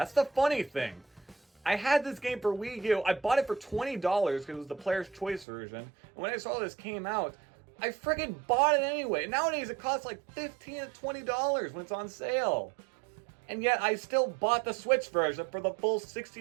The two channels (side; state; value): left; drops out; at 5.5 s